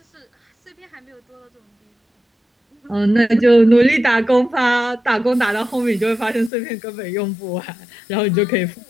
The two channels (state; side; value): drops out; right; at 6.5 s